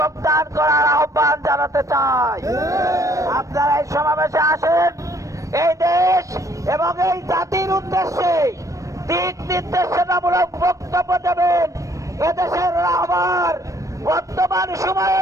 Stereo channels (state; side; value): late; left; 0.16 ms